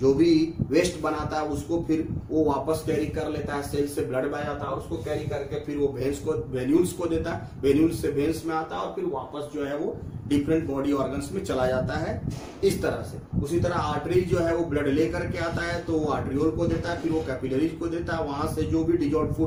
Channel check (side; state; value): both; identical; correlation 1.00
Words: जो भी वेस्ट बनाता है उसको फिर वो वापस कैरी कर लेता है, सेल से ब्लड बह जाता है, और उसको कैरी करके फिर वो भेंस को वेन्यूल्स को देता है, वेन्यूल्स से भेंस में आता है, और फिर वापस जो है वो डिफरेंट बॉडी ऑर्गन्स में चला जाता है इस तरह से। उसी तरह आर्टरी जो है वो ब्लड ले करके आता है, तो वो आर्टरियोल को देता है, फिर वो कैपिलरीज को देता है। वहां से जो भी डिजोल्व